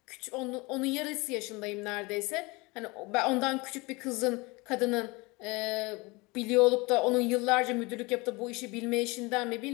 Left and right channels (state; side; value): quieter; right; 25.2 dB